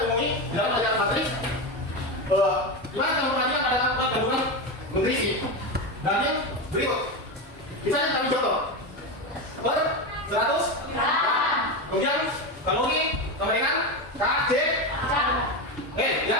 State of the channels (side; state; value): both; normal; correlation 0.16